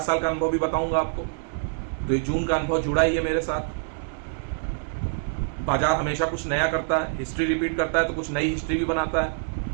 साल का अनुभव भी बताऊंगा आपको। तो ये जून का अनुभव जुड़ा ही है मेरे साथ। बाजार हमेशा कुछ नया करता है, हिस्ट्री रिपीट करता है, तो कुछ नई हिस्ट्री भी बनाता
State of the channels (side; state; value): left; silent; 61 dB below the other